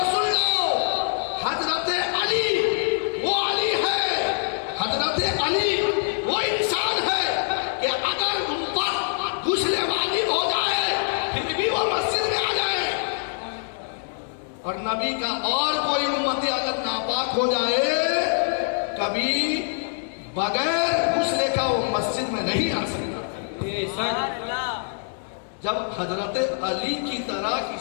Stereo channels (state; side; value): silent; right; 61 dB below the other